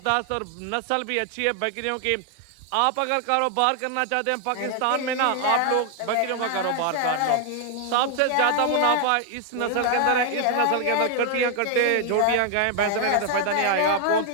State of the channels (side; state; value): both; different; correlation 0.00